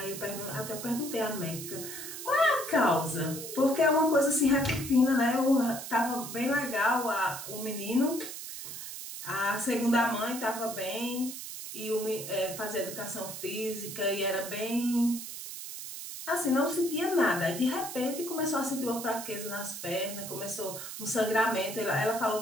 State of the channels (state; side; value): noise; right; hiss, 9 dB below the sound